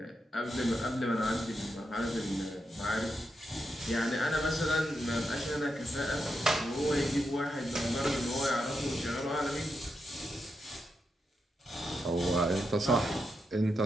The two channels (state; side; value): normal; both; correlation 0.85